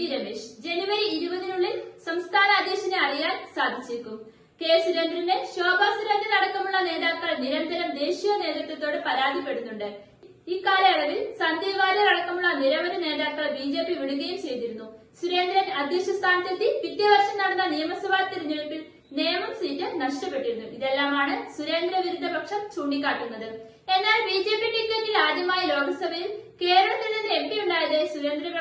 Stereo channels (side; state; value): both; identical; correlation 1.00